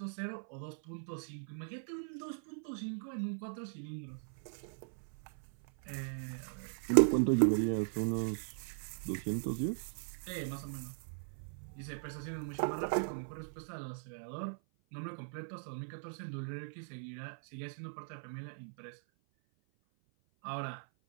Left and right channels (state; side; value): silent; left; 52 dB below the other